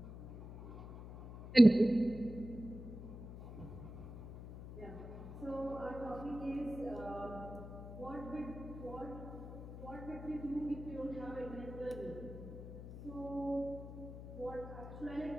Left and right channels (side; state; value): left; noise; hum, 11 dB below the sound